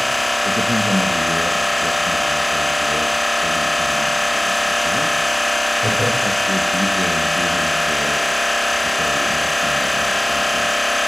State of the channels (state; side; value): noise; right; hum, 29 dB below the sound